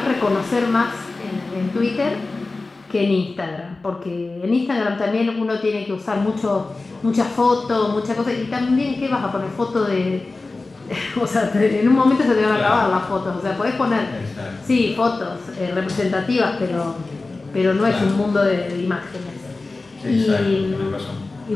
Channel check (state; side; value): quieter; right; 3.5 dB